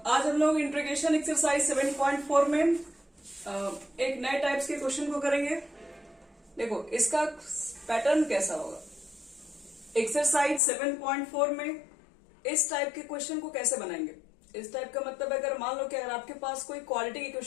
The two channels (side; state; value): right; drops out; at 10.6 s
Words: हम लोग इंटीग्रेशन एक्सरसाइज 7.4 में एक नए टाइप्स के क्वेश्चन को करेंगे। देखो इसका पैटर्न कैसा होगा। एक्सरसाइज 7.4 में इस टाइप के क्वेश्चन को कैसे बनाएंगे। इस टाइप का मतलब अगर मान लो कि अगर आपके पास कोई क्वालिटी